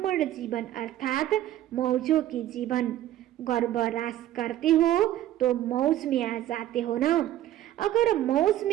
जीवन अर्थात मौजों की जीवन। गर्भरास करते हो तो मौज में आ जाते हो ना। अगर मौज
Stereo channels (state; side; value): quieter; left; 13.1 dB